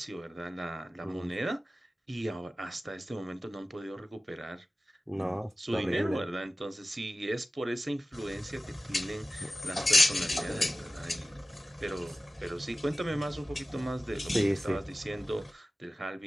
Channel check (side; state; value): both; normal; correlation 0.95